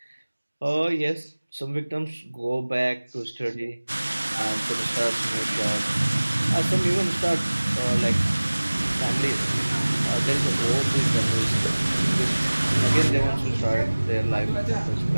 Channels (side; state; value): both; inverted; correlation -1.00